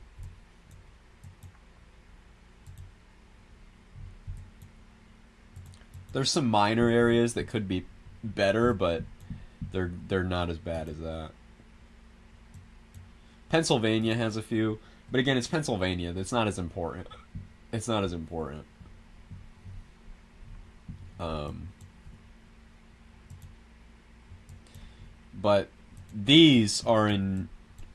There's some minor areas that could be better, but they're not as bad as that. Pennsylvania has a few, but again, it's Pennsylvania. That's not as important. It's not as important. But these are in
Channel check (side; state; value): both; identical; correlation 1.00